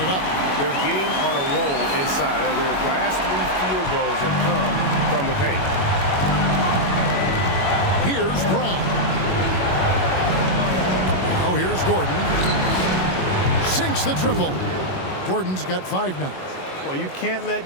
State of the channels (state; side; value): late; right; 21 ms